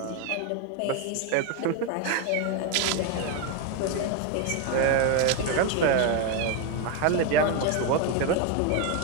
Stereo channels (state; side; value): different; both; correlation 0.02